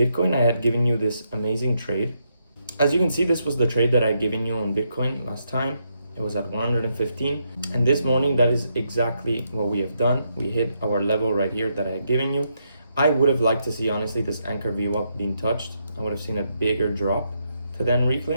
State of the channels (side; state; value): both; inverted; correlation -0.79